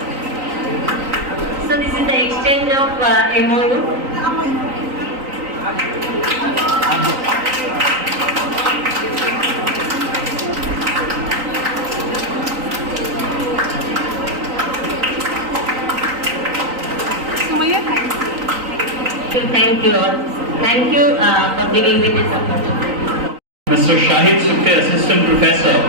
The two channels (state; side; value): late; left; 3.9 ms